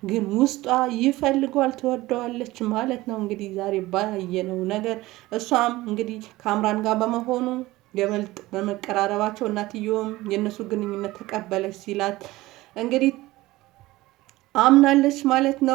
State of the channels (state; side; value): quieter; left; 18.5 dB